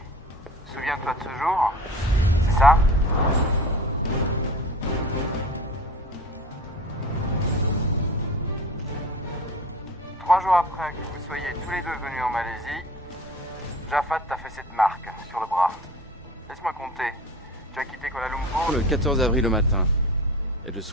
Souviens-toi de ce jour? C'est ça? Trois jours après que vous soyez tous les deux venus en Malaisie, Jafad t'a fait cette marque sur le bras. Laisse-moi compter. Tu as quitté Kuala Lumpur Le 14 avril au matin. Et le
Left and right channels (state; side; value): normal; both; correlation 0.38